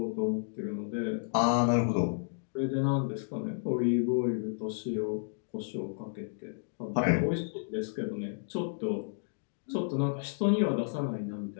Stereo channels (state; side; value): silent; right; digital silence